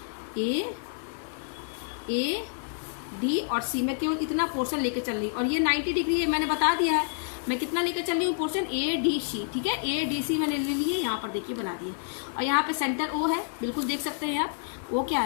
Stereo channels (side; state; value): right; silent; digital silence